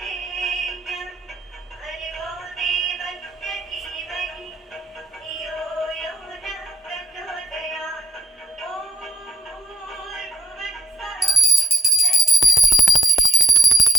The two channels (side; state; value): both; normal; correlation 0.60